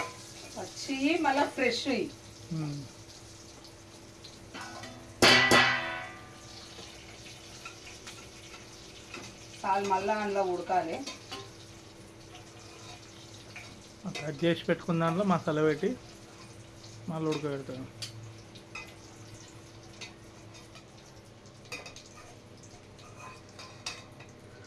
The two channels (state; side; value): identical; both; correlation 1.00